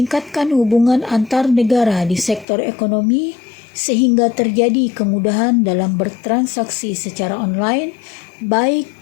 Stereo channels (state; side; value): drops out; right; at 2.5 s